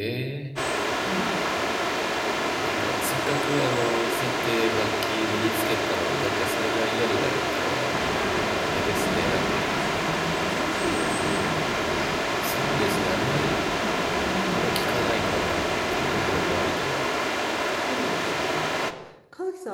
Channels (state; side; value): identical; both; correlation 1.00